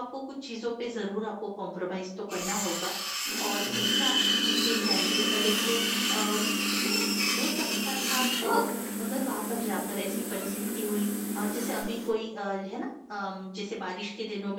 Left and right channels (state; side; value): identical; both; correlation 1.00